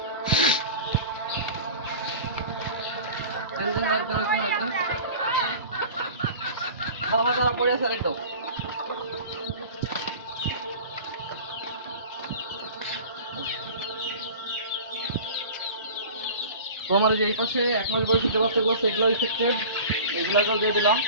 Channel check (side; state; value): both; inverted; correlation -0.38